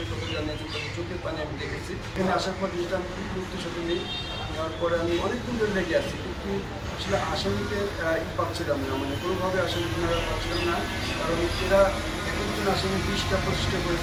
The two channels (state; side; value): identical; both; correlation 1.00